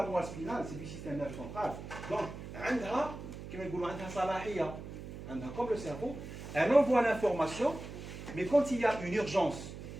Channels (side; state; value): right; noise; hum, 11 dB below the sound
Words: moelle spinale, c'est du système nerveux central. Donc, comme le cerveau, elle envoie l'information, mais quand il y a une urgence,